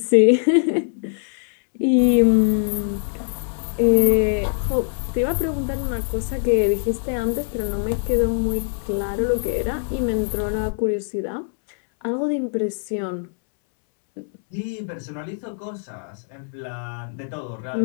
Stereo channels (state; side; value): silent; right; 64 dB below the other